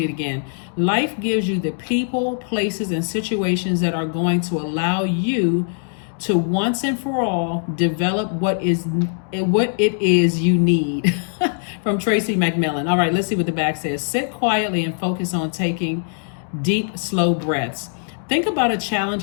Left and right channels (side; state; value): right; silent; digital silence